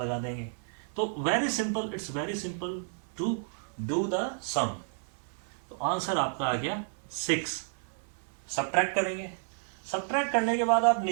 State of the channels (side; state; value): left; silent; 57 dB below the other